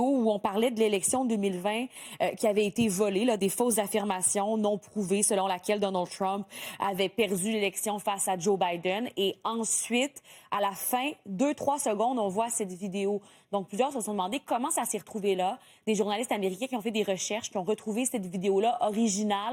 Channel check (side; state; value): both; identical; correlation 1.00